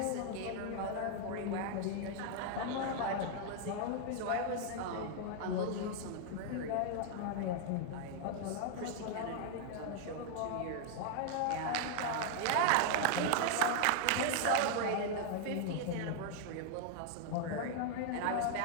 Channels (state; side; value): different; both; correlation 0.00